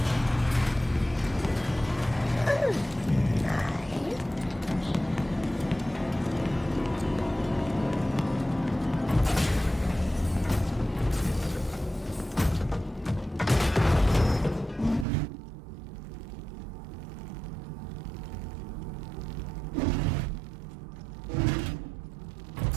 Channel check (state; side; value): drops out; left; at 15.1 s